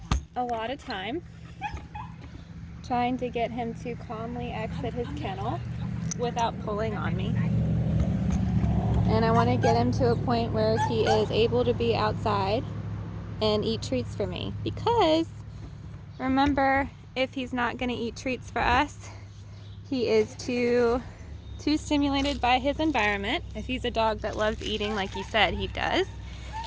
a lot of time trying to get him to calmly exit his kennel without pulling on me. And I want to get him to a point where he is able to be outside and eat treats for me. Because, remember, if he's not going to eat treats for us, he is too stimulated by his environment. If he's a dog that loves eating like he said he does,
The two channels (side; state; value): both; identical; correlation 1.00